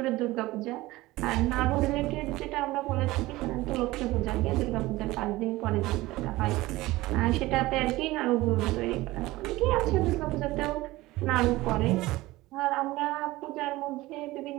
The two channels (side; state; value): left; quieter; 18.9 dB